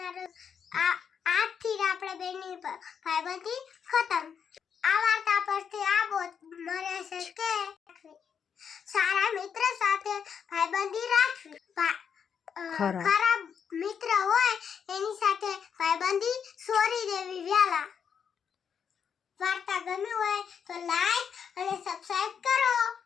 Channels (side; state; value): right; quieter; 7.2 dB